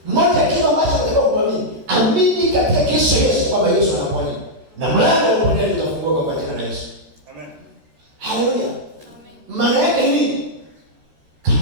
Moja kitu ambacho unataka kuamini, amini katika Kristo Yesu kwamba Yesu anaponya. Na mlango wa uponyaji utafunguka kwa jina la Yesu. Amen. Haleluya. Amen. Maana yake nini?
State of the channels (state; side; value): late; left; 13 ms